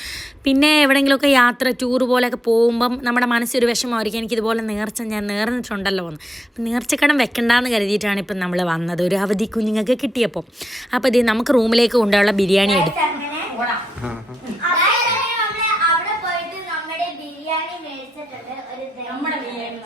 പിന്നെ എവിടെയെങ്കിലുമൊക്കെ യാത്ര ടൂർ പോലെയൊക്കെ പോകുമ്പം നമ്മുടെ മനസ്സൊരു വിഷമമായിരിക്കും, എനിക്കിതുപോലെ നേർച്ച ഞാൻ നേർന്നിട്ടുണ്ടല്ലോ എന്ന്. അപ്പം നേർച്ചക്കടം വെക്കണ്ടെന്ന് കരുതിയിട്ടാണ് ഇപ്പം നമ്മൾ വന്നത്, ഒരു അവധി കുഞ്ഞുങ്ങൾക്ക് കിട്ടിയപ്പോൾ. അപ്പോൾ ഇത് നമുക്ക് റൂമിലേക്ക് കൊണ്ടുള്ള ബിരിയാണി എടുക്കും.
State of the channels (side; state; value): both; normal; correlation 0.84